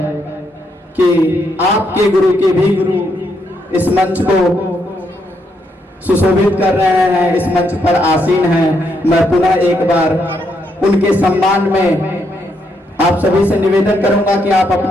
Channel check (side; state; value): both; normal; correlation 0.77